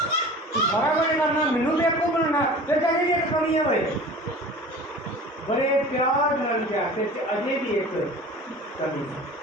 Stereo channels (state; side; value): normal; both; correlation 0.40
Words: ਤੂੰ ਸਾਰਾ ਕੁਝ ਕਰਨਾ, ਮੈਨੂੰ ਬੇਵਕੂਫ ਬਣਾਉਣਾ, ਫਿਰ ਕਹਿੰਦੇ ਵੀ ਇੱਕ ਕਮੀ ਹੋਏ। ਬੜੇ ਪਿਆਰ ਨਾਲ ਕਿਹਾ ਤੇ ਅਜੇ ਵੀ ਇੱਕ ਕਮੀ।